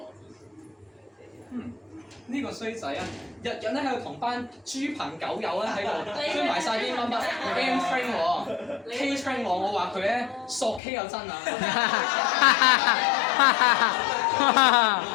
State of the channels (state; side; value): drops out; right; at 10.8 s